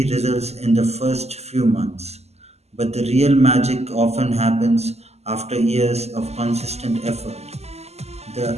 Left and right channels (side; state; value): left; late; 0.30 ms